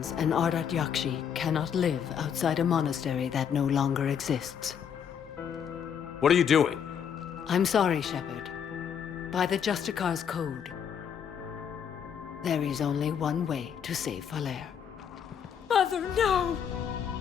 an Ardat Yakshi cannot live outside a monastery that no longer exists. What are you doing? I'm sorry, Shepard. By the Justicar's code, there is only one way to save Falaire. Mother, no!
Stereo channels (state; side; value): quieter; right; 7.9 dB